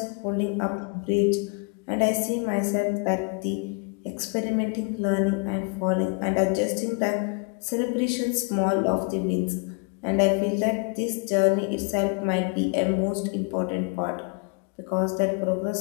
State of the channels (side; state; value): right; quieter; 34.9 dB